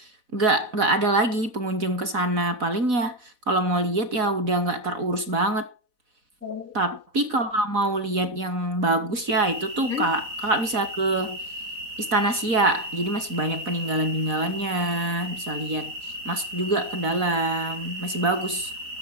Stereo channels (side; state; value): left; late; 4.1 ms